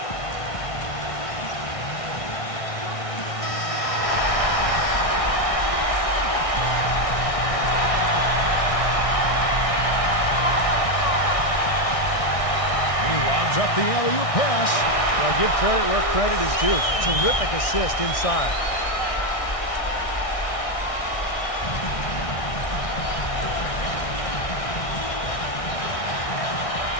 Up the alley-oop pass. Well, give credit where credit is due. Terrific assist inside.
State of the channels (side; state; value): right; late; 1.6 ms